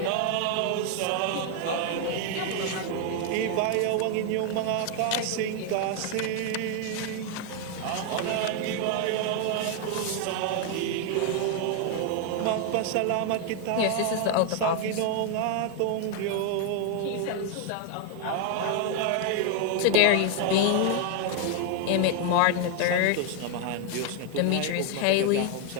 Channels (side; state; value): both; different; correlation 0.00